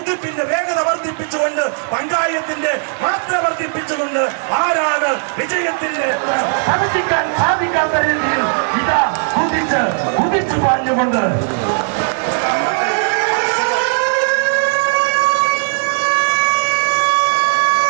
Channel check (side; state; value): left; silent; 68 dB below the other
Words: വേഗത വർദ്ധിപ്പിച്ചുകൊണ്ട്, പങ്കായത്തിന്റെ മാത്ര വർദ്ധിപ്പിച്ചുകൊണ്ട് ആരാണ് വിജയത്തിന്റെ സാധിക്കാൻ സാധിക്കാത്ത രീതിയിൽ ഇതാ കുതിച്ചു പാഞ്ഞുകൊണ്ട്